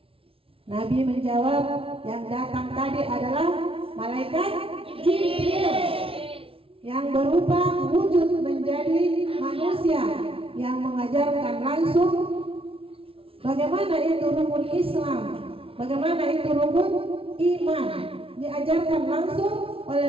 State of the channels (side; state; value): left; late; 0.26 ms